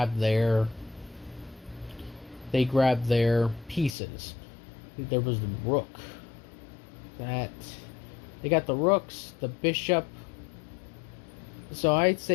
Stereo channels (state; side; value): drops out; right; at 4.0 s